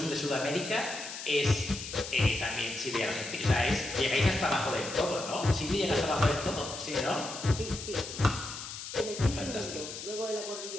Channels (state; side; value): noise; left; hiss, 9 dB below the sound